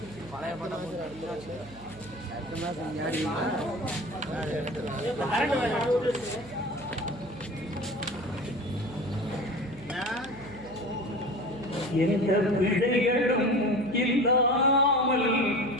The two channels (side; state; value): right; noise; hum, 19 dB below the sound